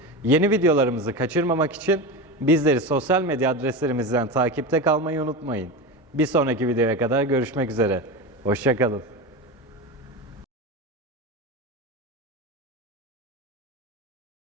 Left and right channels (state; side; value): normal; both; correlation 0.22